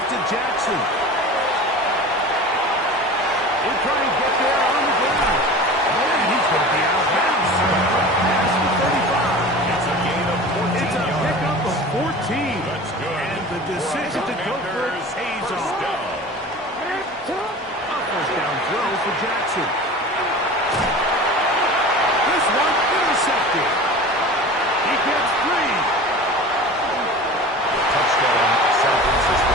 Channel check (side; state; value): both; normal; correlation 0.36